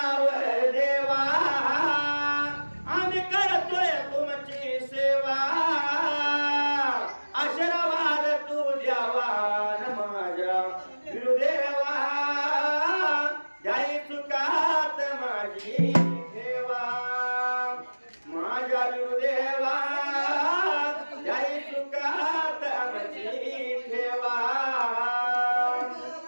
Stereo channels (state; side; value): inverted; both; correlation -1.00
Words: देवा आम्ही करतोय तुमची सेवा आशीर्वाद तू द्यावा न माझ्या गुरुदेवा जाई चुकात माझी ठेवा माझ्या गुरुदेवा जाई चुकात माझी ठेवा